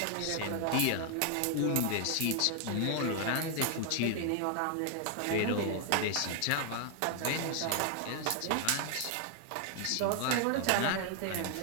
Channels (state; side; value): different; both; correlation 0.00